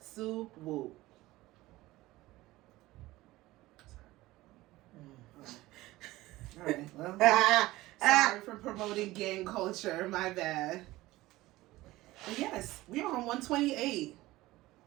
Woo. Alright, well, sorry for promoting gang culture, my bad. But yes, we are on 128.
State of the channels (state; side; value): quieter; left; 18.1 dB